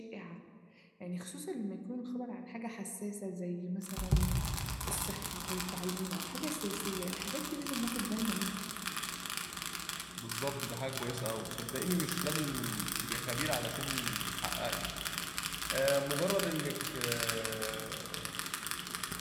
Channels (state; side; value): identical; both; correlation 1.00